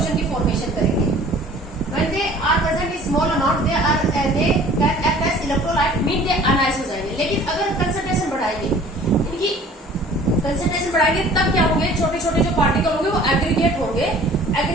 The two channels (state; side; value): normal; both; correlation 0.50